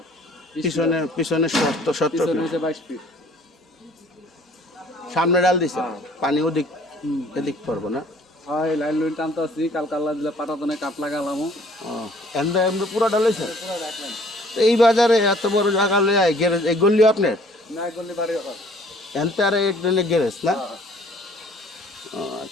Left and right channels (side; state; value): both; normal; correlation 0.56